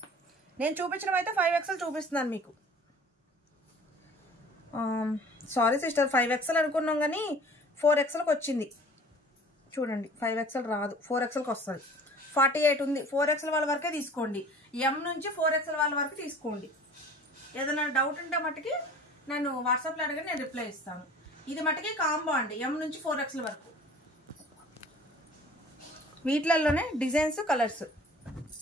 నేను చూపించడం అయితే 5XL చూపిస్తున్నాను మీకు. సారీ సిస్టర్, 5XL అనుకున్నాం కానీ 4XLకి వచ్చింది చూడండి. 5XL రాదు, 4XLకి వస్తుంది. 48 ఉంది. 4XL వాళ్ళ వరకే తీసుకోండి. M నుంచి 4XL వాళ్ళ వరకు తీసుకోండి. ఏదైనా డౌట్ ఉంటే మట్టుకి నేను వాట్సాప్లో అడిగి నేను రిప్లై ఇస్తాను. ఇది మట్టుకి కాంబో అండి, M నుంచి 4XL వరకు. వీటిలలోనే డిజైన్స్ కలర్స్.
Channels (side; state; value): both; normal; correlation 0.47